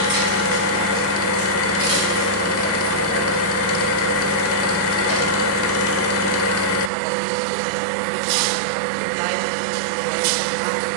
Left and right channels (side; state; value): left; drops out; at 6.9 s